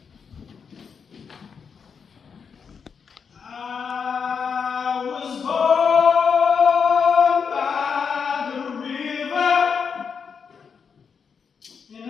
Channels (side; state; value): right; quieter; 6.3 dB